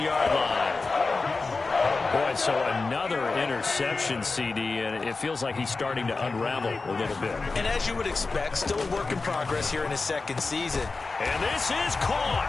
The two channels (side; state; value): right; quieter; 3.9 dB